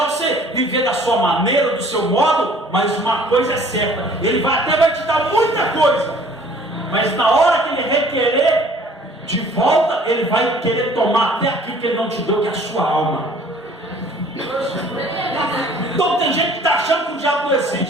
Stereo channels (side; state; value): both; normal; correlation 0.53